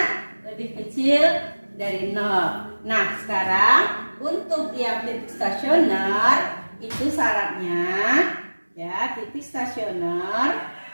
lebih kecil dari 0. Nah, sekarang untuk yang titik stasioner itu syaratnya ya, titik stasioner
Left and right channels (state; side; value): inverted; both; correlation -1.00